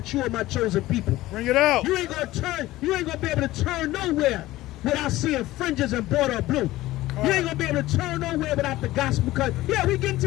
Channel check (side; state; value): right; quieter; 16.8 dB